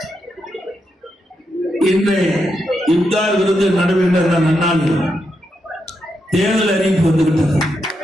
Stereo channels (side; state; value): both; normal; correlation 0.83